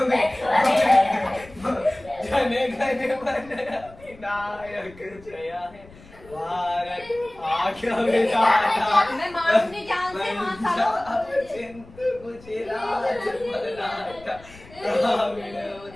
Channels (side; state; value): left; noise; rumble, 22 dB below the sound